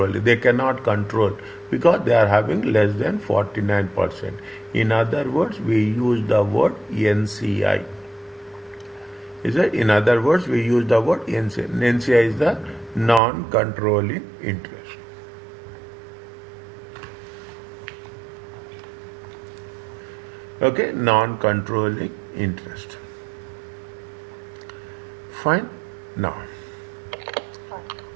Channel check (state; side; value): drops out; left; at 13.2 s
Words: they cannot control because they are having less than 49%. In other words, we use the word NCI. Is it? In other words, we use the word NCI. NCI is the non-controlling interest. Okay, non-controlling interest. Fine. Now,